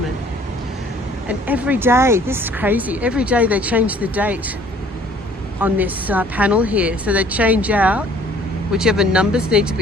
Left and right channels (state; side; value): normal; both; correlation 0.56